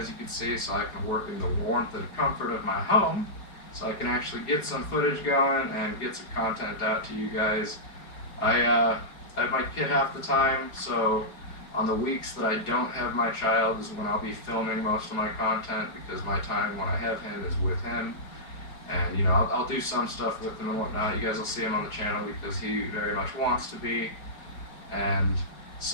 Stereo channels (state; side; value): late; right; 4.9 ms